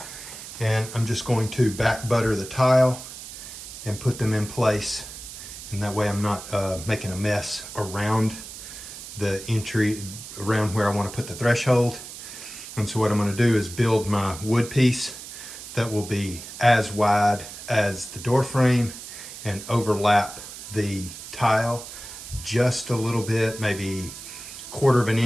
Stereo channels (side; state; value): right; noise; hiss, 12 dB below the sound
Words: and I'm just going to back butter the tile and put them in place, and that way I'm not making a mess around the entry, around where I want to put the threshold. And so what I'm going to do is build my wood piece that will be as wide as the door frame and overlap the tile just a little bit, maybe 1/4 of an